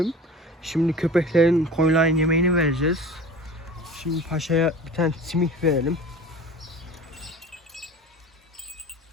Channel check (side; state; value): both; normal; correlation 0.38